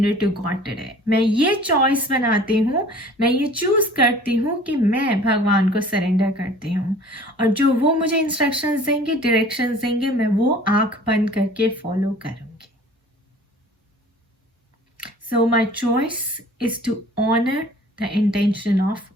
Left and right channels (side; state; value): both; normal; correlation 0.48